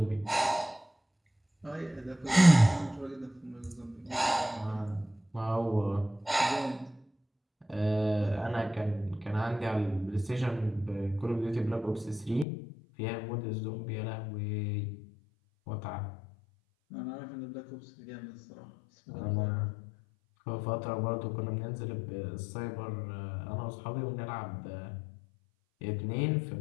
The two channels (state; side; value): drops out; right; at 12.5 s